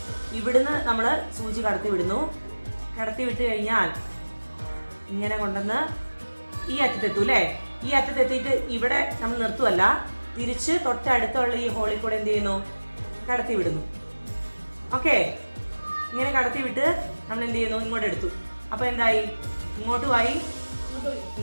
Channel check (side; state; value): both; inverted; correlation -1.00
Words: ഇവിടുന്ന് നമ്മൾ സൂചി കടത്തി വിടുന്നു. കടത്തി വിട്ട് കഴിഞ്ഞാൽ ഇങ്ങനെ കൊണ്ടുവന്ന് ഈ അറ്റത്തെത്തും അല്ലേ? ഈ അറ്റത്തെത്തിയിട്ട് ഇവിടെ നമ്മൾ നിർത്തുമല്ല, തിരിച്ച് തൊട്ടടുത്തുള്ള ഈ ഹോളിൽ കൂടെ എന്ത് ചെയ്യുന്നു, കടത്തി വിടുന്നു. ഓക്കെ, ഇങ്ങനെ കടത്തി വിട്ട് നമ്മൾ എന്ത് ചെയ്യുന്നു, ഇങ്ങോട്ട് എടുത്തു. അപ്പോൾ എന്തായി, ഇങ്ങോട്ടുമായി.